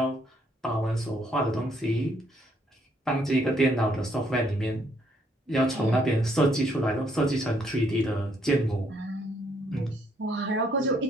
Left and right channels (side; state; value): both; normal; correlation 0.70